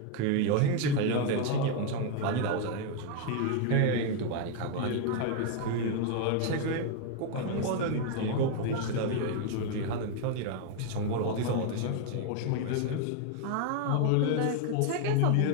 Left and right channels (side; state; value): both; different; correlation 0.01